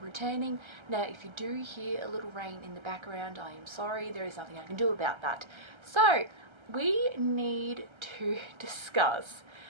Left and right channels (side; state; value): left; late; 1.3 ms